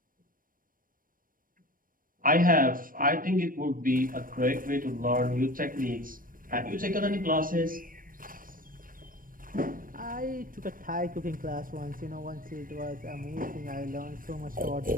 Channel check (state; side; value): late; left; 0.40 ms